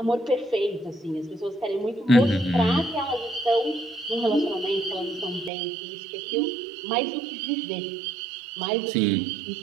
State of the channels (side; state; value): left; drops out; at 5.5 s